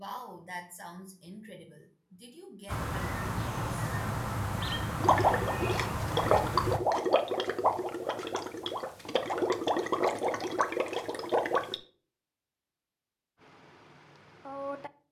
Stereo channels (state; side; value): identical; both; correlation 1.00